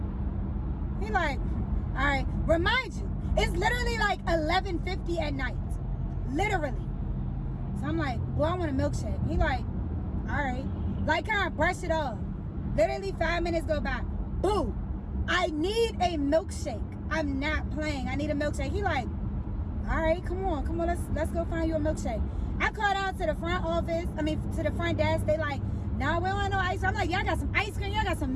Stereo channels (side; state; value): both; identical; correlation 1.00